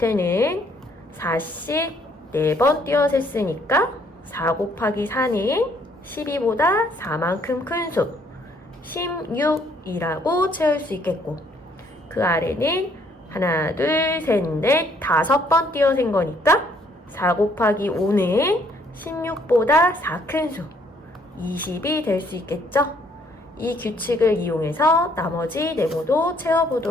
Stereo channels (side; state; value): both; normal; correlation 0.65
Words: 4씩 4번 띄어셌으니까 4 곱하기 4는 12보다 4만큼 큰 수 16이라고 채울 수 있겠고 그 아래는 하나, 둘, 셋, 넷, 5번 띄어센 거니까 4 곱하기 5는 16보다 4 큰 수 20이 될 수 있겠죠? 이 규칙을 이용해서 나머지 네모도